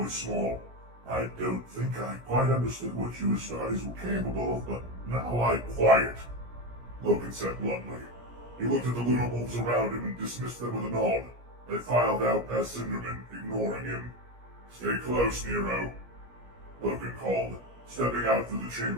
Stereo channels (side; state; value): left; late; 17 ms